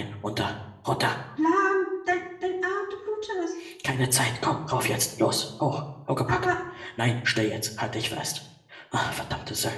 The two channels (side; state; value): both; identical; correlation 1.00